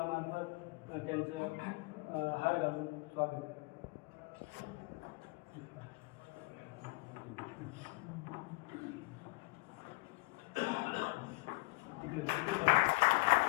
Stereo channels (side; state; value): right; quieter; 26.8 dB